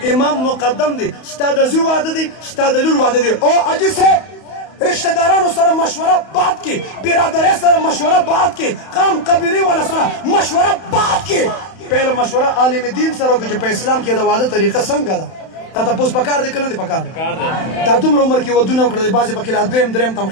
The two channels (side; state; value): right; late; 31 ms